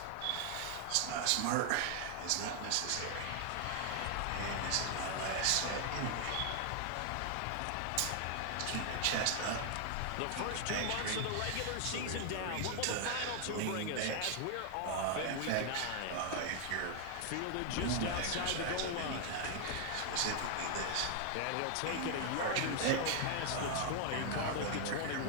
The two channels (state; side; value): different; both; correlation 0.00